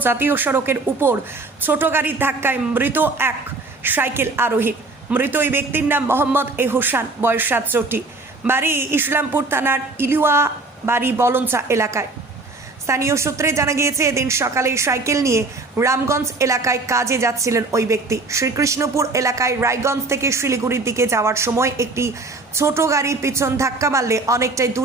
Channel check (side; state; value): left; quieter; 3.3 dB